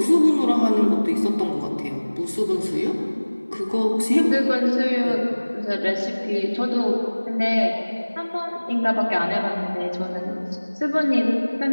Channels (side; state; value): both; inverted; correlation -1.00